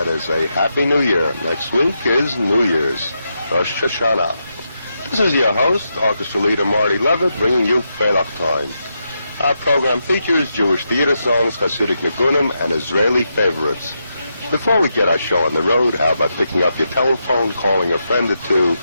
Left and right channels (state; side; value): inverted; both; correlation -0.84